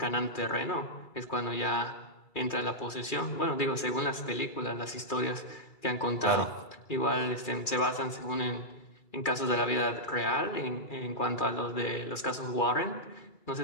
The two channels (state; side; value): late; right; 2.4 ms